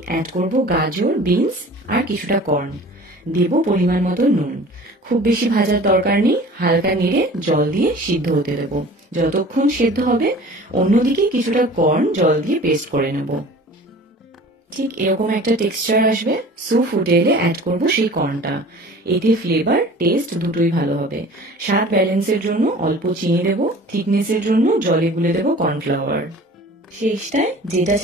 অ্যাড করব গাজর, বিনস আর কিছুটা কর্ন। দেব পরিমাণ মতো নুন। খুব বেশি ভাজার দরকার নেই, হালকা নেড়ে জল দিয়ে সিদ্ধ হতে দেবো। যতক্ষণ সেদ্ধ হবে অন্যদিকে কিছুটা কর্ন জল দিয়ে পেস্ট করে নেব। ঠিক এরকম একটা টেক্সচার আসবে। স্যুপ ফুটে এলে অ্যাড করব সেই কর্নটা। এতে ফ্লেভার টেস্ট দুটোই ভালো হবে। স্বাদ ব্যালেন্সের জন্য অল্প চিনি দেব, থিকনেসের জন্য জলে গুলে দেব কর্নফ্লাওয়ার। শেষটায় যেটা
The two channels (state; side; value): normal; both; correlation 0.44